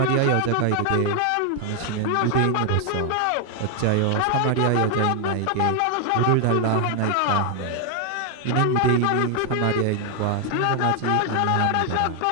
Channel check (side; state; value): both; different; correlation 0.00